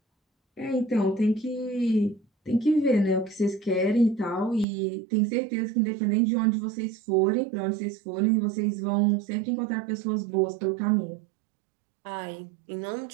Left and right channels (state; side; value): drops out; left; at 4.7 s